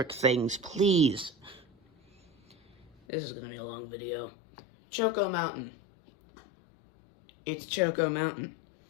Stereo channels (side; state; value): right; drops out; at 3.0 s